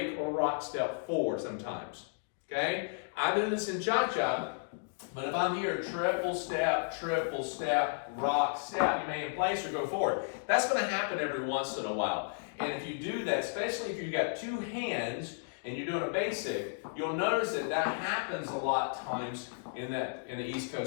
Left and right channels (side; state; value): right; silent; digital silence